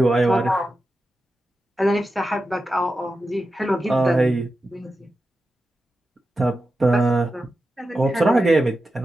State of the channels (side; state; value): both; normal; correlation 0.91